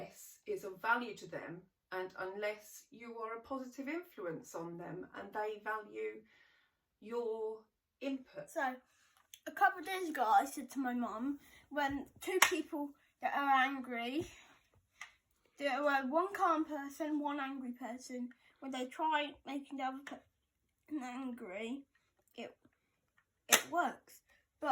it's of value to them and unless you are a positive influence on them and they value your input. So a couple of days ago I said to my mum, when 2 people that are angry, there were one calm person, one angry person. When they try making the other person angry, it works.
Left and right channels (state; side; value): identical; both; correlation 1.00